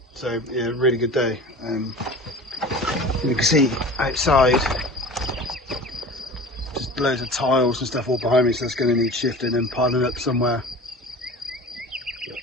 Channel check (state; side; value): normal; both; correlation 0.38